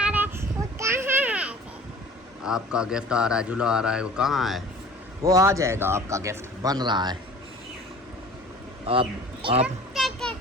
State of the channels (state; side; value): normal; both; correlation 0.45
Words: रहा है, वो कहाँ है? आपका गिफ्ट आ रहा है, झूला आ रहा है, वो कहाँ है? वो आ जाएगा, आपका गिफ्ट बन रहा है। आप